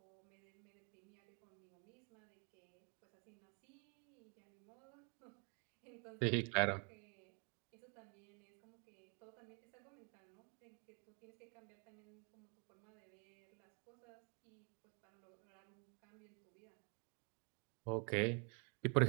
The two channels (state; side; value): quieter; left; 36.6 dB